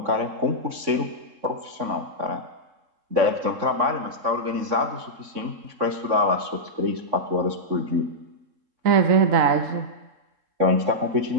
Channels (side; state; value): left; late; 3.5 ms